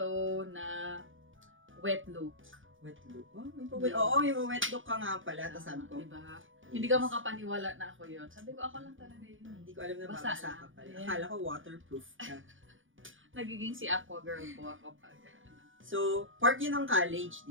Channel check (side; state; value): left; late; 0.57 ms